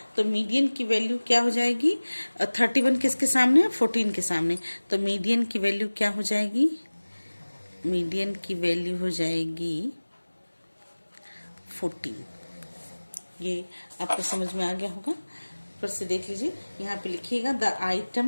तो मीडियन की वैल्यू क्या हो जाएगी? 31 किसके सामने है? 14 के सामने। तो मीडियन की वैल्यू क्या हो जाएगी? मीडियन की वैल्यू हो जाएगी 14। ये आपको समझ में आ गया होगा। फिर से देख लीजिए, यहाँ पे लिखिएगा the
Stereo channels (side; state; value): both; inverted; correlation -1.00